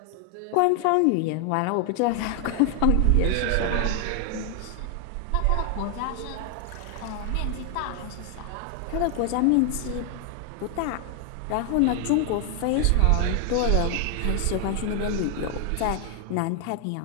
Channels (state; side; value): different; both; correlation 0.00